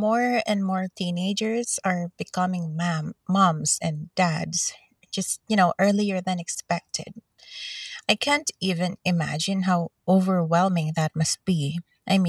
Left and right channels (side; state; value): both; identical; correlation 1.00